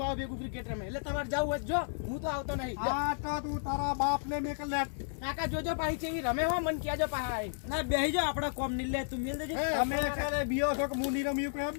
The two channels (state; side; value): silent; right; 56 dB below the other